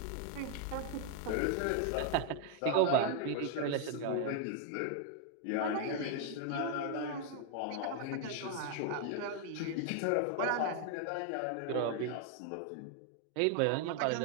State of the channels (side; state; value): both; different; correlation 0.00